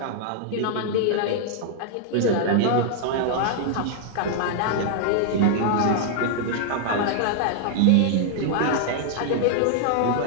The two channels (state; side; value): different; both; correlation -0.01